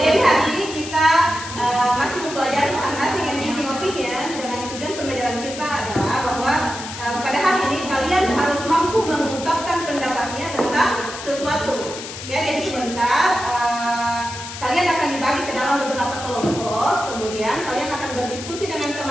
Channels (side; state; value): left; noise; hiss, 10 dB below the sound